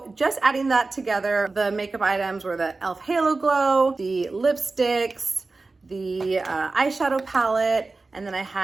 just adding that together, the makeup items were the e.l.f. Halo Glow, the lipsticks, the eyeshadow palette, and then I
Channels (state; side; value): quieter; left; 3.6 dB